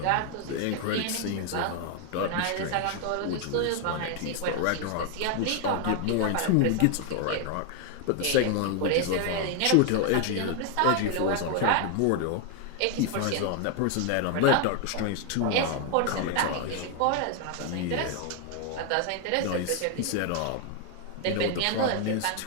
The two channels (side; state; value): both; different; correlation 0.00